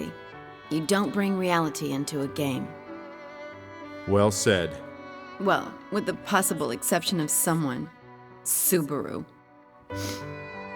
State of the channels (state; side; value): identical; both; correlation 1.00